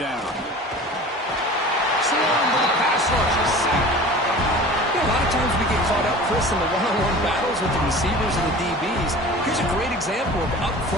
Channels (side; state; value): both; normal; correlation 0.40